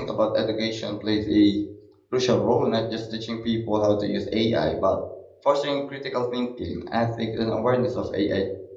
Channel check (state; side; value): identical; both; correlation 1.00